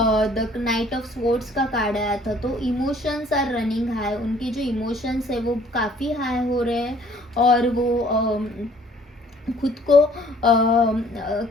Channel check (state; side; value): normal; both; correlation 0.57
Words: नाइट ऑफ स्वॉर्ड्स का कार्ड आया था, तो इमोशंस आर रनिंग हाई, उनके जो इमोशंस है वो काफ़ी हाई हो रहे हैं, और वो खुद